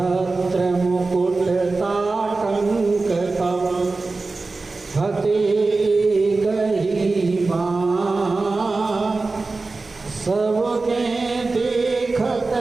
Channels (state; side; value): quieter; left; 3.7 dB